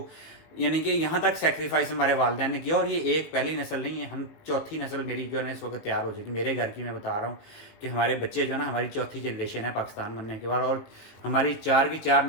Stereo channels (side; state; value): right; late; 18 ms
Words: यानी कि यहाँ तक सेक्रीफाइस हमारे वालिदैन ने किया। और ये एक पहली नस्ल नहीं है, हम चौथी नस्ल मेरी जो है ना इस वक्त तैयार हो जाएगी। मेरे घर की मैं बता रहा हूँ कि हमारे बच्चे जो है ना, हमारी चौथी जनरेशन है पाकिस्तान बनने के बाद, और हमारी 4 की 4